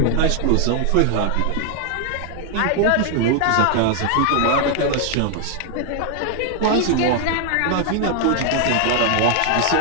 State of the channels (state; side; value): different; both; correlation 0.00